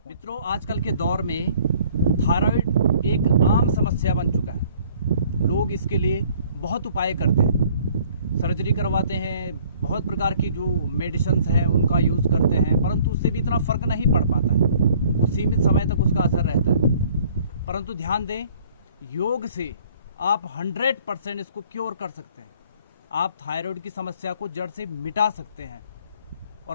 मित्रों, आजकल के दौर में थायराइड एक आम समस्या बन चुका है। लोग इसके लिए बहुत उपाय करते हैं, सर्जरी करवाते हैं, बहुत प्रकार की जो मेडिसिन्स हैं उनका यूज़ करते हैं, परंतु उससे भी इतना फ़र्क नहीं पड़ पाता है। वो सीमित समय तक उसका असर रहता है। परंतु ध्यान दें, योग से आप 100% इसको क्योर कर सकते हैं। आप थायराइड की समस्या को जड़ से मिटा सकते हैं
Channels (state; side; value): inverted; both; correlation -0.57